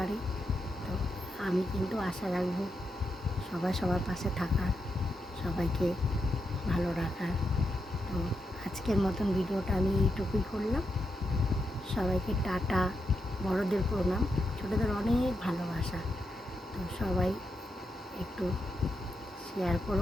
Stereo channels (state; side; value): normal; both; correlation 0.85